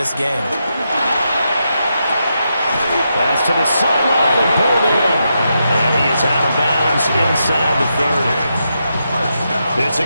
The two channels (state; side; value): inverted; both; correlation -0.84